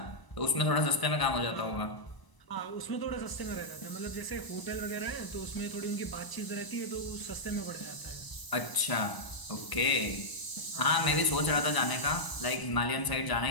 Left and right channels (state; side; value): late; right; 1.0 ms